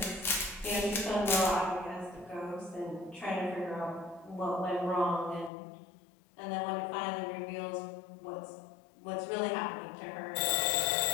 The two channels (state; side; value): drops out; right; at 5.5 s